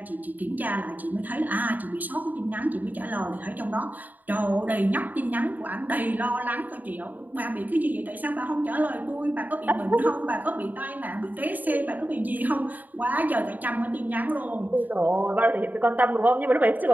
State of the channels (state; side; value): late; left; 0.084 ms